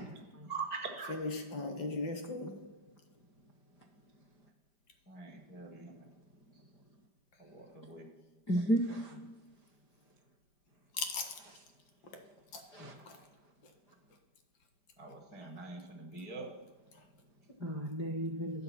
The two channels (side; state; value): right; late; 5.1 ms